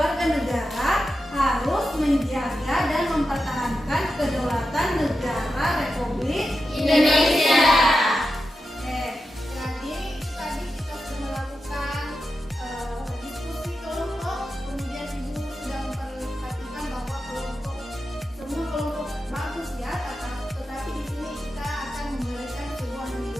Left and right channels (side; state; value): both; normal; correlation 0.90